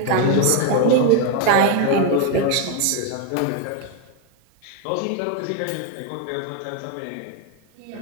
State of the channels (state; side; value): different; both; correlation 0.01